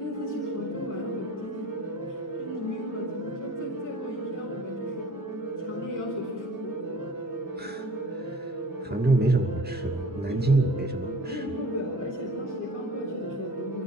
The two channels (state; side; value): normal; both; correlation 0.44